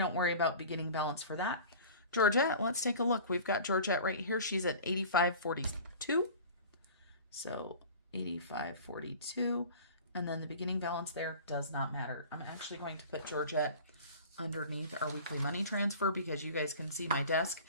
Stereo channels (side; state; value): both; inverted; correlation -0.40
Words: worry about beginning balance for that. Georgette, let's take a look. We've got Georgette right here. She's at $85.42. So $85.42. And then the beginning balance there does not matter. I'm actually going to put Georgette underneath our weekly money transfer because you guys can see my desk